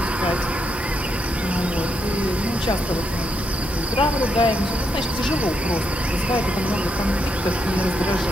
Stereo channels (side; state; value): both; normal; correlation 0.79